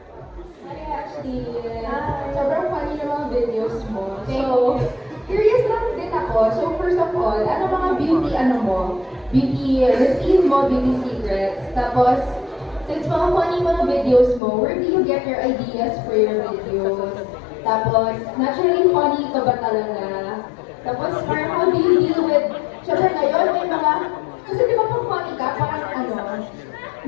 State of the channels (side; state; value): right; drops out; at 14.4 s